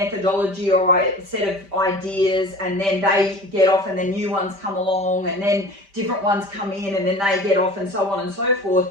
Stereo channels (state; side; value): late; left; 5.1 ms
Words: or a set of ideas, and then they get off and then new ones come along, and then different ones come in and then they get off, and so on and so forth.